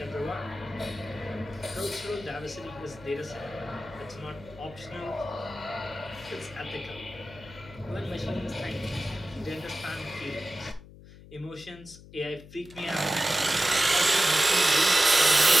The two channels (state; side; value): noise; left; hum, 19 dB below the sound